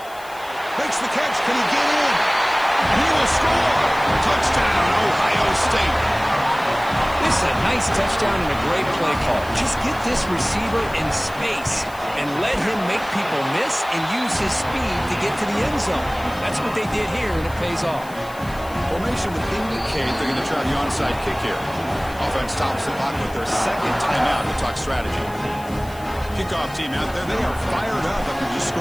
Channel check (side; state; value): left; noise; hiss, 21 dB below the sound